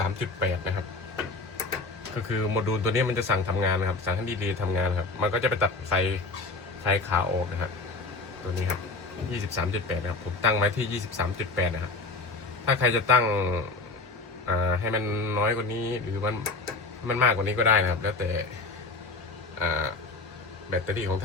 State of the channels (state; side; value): quieter; right; 3.6 dB